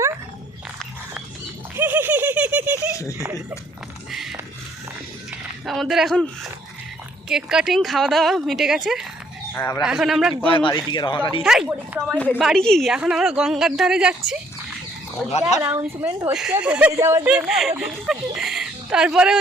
আমাদের এখন কেক কাটিং খাওয়া দাওয়া মিটে গেছে। এখন আমরা বাড়ির দিকে রওনা দিই। হেই, বাড়ি কি? এখন আমরা গঙ্গার ধারে যাচ্ছি। অ্যানাউন্সমেন্ট হচ্ছে বেরিয়ে যাওয়ার জন্য। তারপরে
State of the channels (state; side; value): normal; both; correlation 0.65